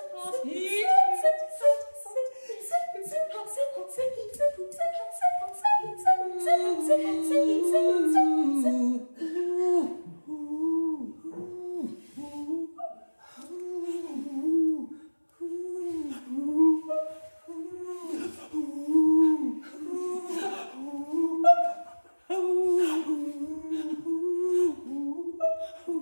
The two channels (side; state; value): both; inverted; correlation -1.00